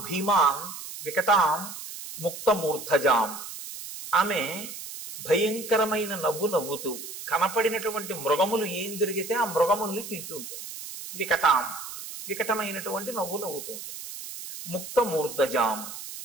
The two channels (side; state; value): right; noise; hiss, 10 dB below the sound